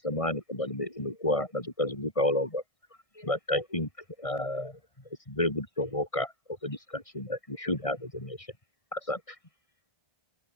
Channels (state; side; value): late; right; 1.6 ms